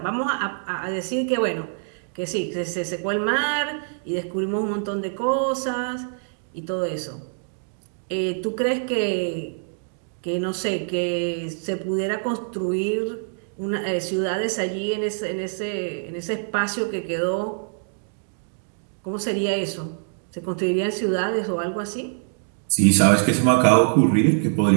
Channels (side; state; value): left; silent; digital silence